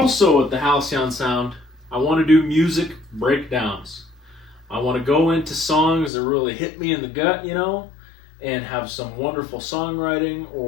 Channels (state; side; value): drops out; right; at 6.1 s